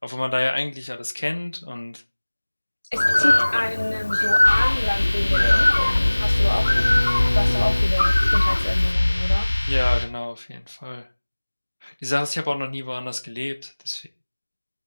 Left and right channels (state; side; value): inverted; both; correlation -1.00